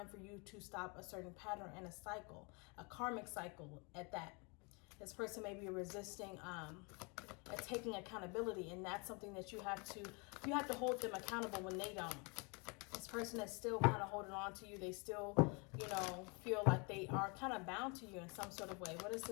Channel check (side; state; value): right; quieter; 31.6 dB